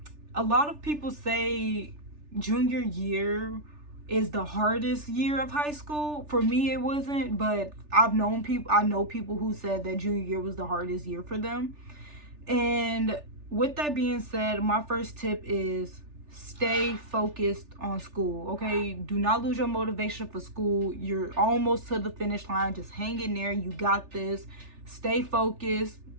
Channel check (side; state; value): left; late; 3.4 ms